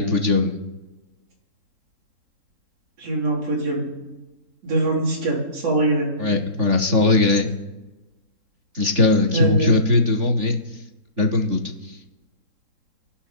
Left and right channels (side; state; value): left; late; 3.5 ms